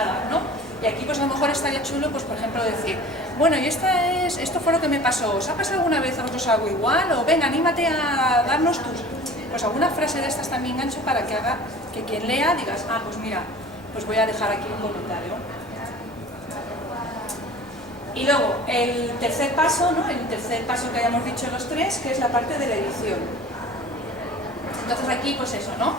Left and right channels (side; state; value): both; normal; correlation 0.43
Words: ¿no? Y aquí pues a lo mejor estaría chulo, pues por ejemplo decir, bueno, y esto fue lo que me pasó, ¿os ha pasado alguna vez a vosotros algo igual? O venga, anímate a darnos pues alguna frase de estas también gancho para que haga que quien lea digas, ah, pues mira, pues voy a dejar aquí un comentario. Y luego, el tercer paso, ¿no? El tercer paso que hayamos dicho los tres, que es la parte de la edición. Entonces aquí, pues eso, ¿no?